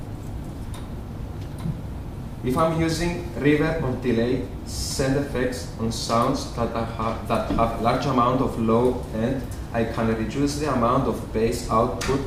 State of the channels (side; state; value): both; identical; correlation 1.00